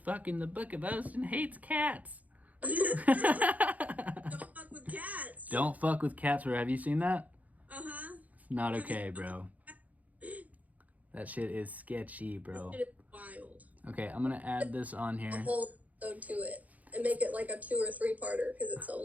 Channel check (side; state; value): left; late; 0.075 ms